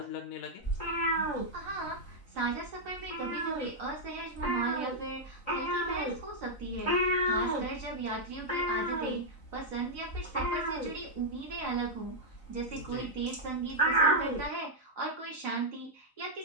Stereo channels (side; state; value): right; late; 3.9 ms